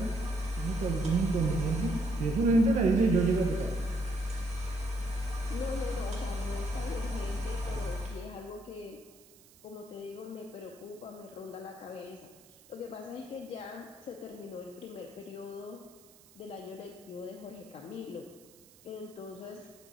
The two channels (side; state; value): right; noise; hiss, 25 dB below the sound